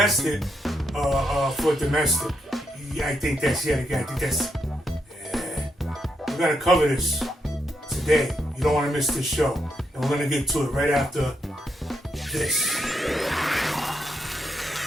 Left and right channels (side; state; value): both; normal; correlation 0.80